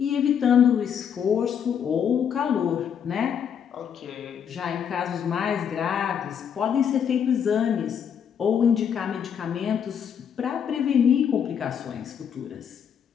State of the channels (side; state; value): right; quieter; 8.0 dB